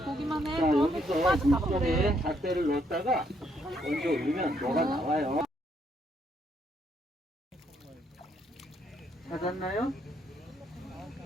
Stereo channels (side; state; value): both; normal; correlation 0.72